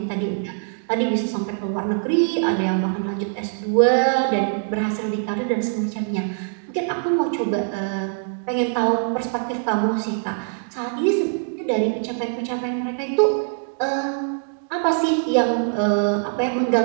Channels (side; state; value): left; silent; digital silence